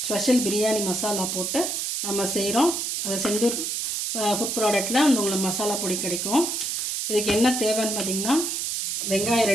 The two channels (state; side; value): noise; right; hiss, 1 dB below the sound